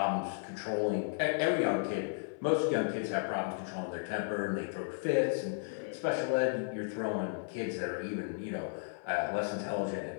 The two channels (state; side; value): silent; right; 55 dB below the other